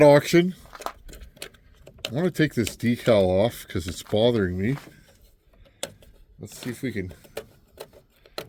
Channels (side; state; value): both; identical; correlation 1.00